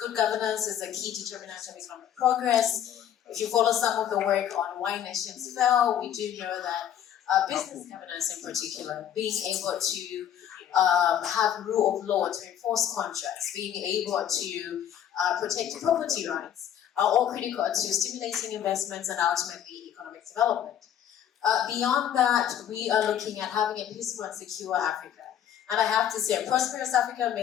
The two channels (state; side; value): quieter; right; 10.0 dB